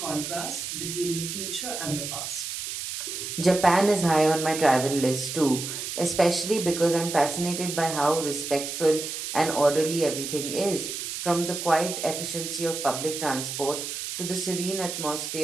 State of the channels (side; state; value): right; noise; hiss, 5 dB below the sound